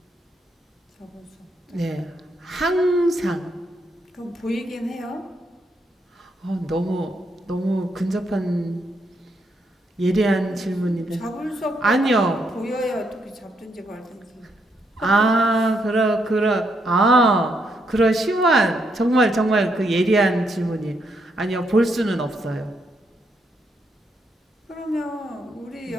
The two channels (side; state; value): both; normal; correlation 0.77